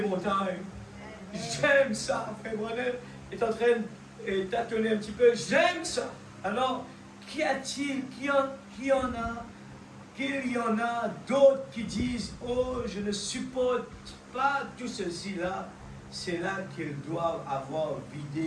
montagnes. J'aime ça. Frère Branham est en train de tâtonner un petit peu. J'aime ça. Alors, qu'y a-t-il? Qu'il y en a d'autres qui disent, oh, je ne supporte pas tout ceci-là. C'est là qu'ils doivent avoir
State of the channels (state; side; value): identical; both; correlation 1.00